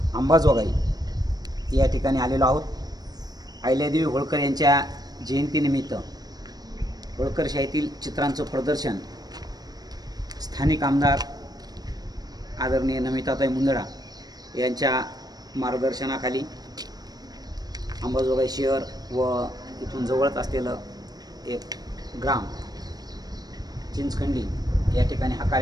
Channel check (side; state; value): left; late; 0.19 ms